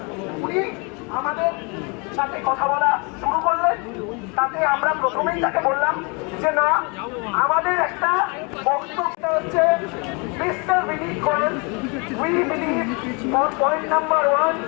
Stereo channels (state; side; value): quieter; right; 31.7 dB